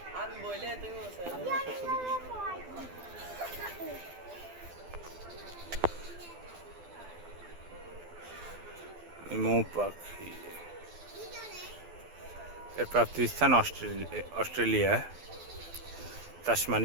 আমি বলে তুমি বসে আছে। মৌ পাখি এর প্রাপ্তিস্থান অস্ট্রেলিয়া,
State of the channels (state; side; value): late; left; 12 ms